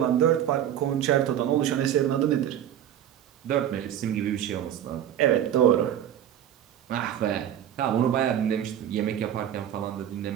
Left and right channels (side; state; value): left; quieter; 10.5 dB